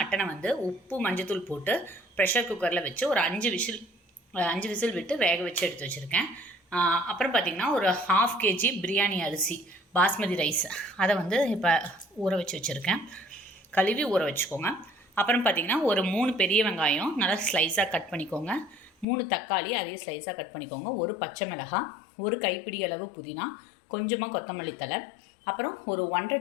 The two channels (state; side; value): drops out; right; at 19.1 s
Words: வந்து உப்பு மஞ்சத்தூள் போட்டு ப்ரெஷர் குக்கரில் வச்சு ஒரு 5 விசில் விட்டு வேக வச்சு எடுத்து வச்சுருக்கேன். அப்புறம் பார்த்திங்கன்னா ஒரு 1/2 kg பிரியாணி அரிசி பாஸ்மதி ரைஸ் அதை வந்து இப்போ ஊற வச்சு வச்சுருக்கேன். கழுவி ஊற வச்சுக்கோங்க. அப்புறம் பார்த்திங்கன்னா ஒரு 3 பெரிய வெங்காயம் நல்லா ஸ்லைஸாக கட் பண்ணிக்கோங்க. 3 தக்காளி அதே ஸ்லைஸாக கட் பண்ணிக்கோங்க. ஒரு பச்சை மிளகாய், ஒரு கைப்பிடி அளவு புதினா, கொஞ்சமாக கொத்தமல்லி தழை, அப்புறம் ஒரு 1.5